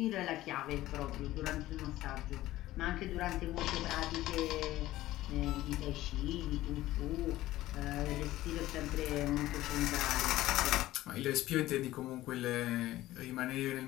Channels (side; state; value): right; quieter; 15.9 dB